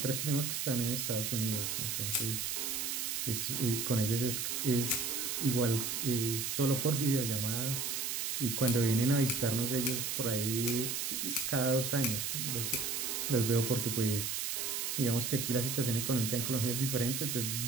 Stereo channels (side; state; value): right; noise; hiss, 1 dB below the sound